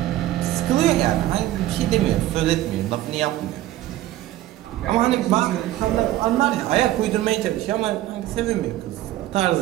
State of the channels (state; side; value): quieter; left; 14.6 dB